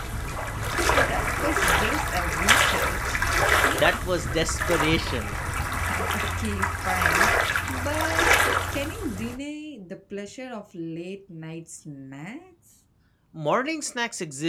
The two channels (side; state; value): both; identical; correlation 1.00